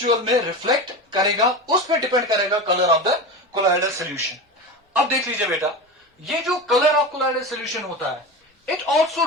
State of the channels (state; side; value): normal; both; correlation 0.25